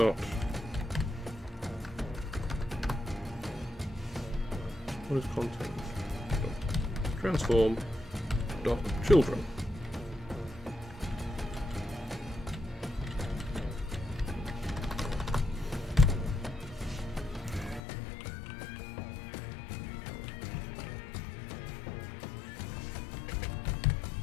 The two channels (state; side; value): drops out; right; at 17.8 s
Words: What is content? Transform dot children.